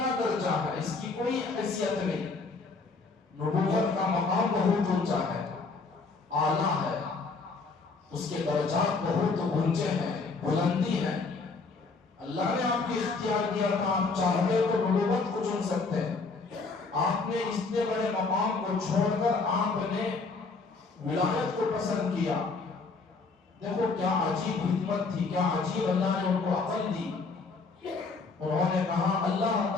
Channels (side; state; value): right; quieter; 4.1 dB